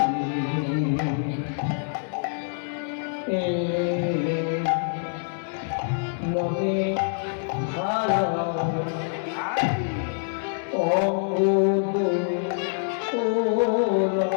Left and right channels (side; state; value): right; silent; digital silence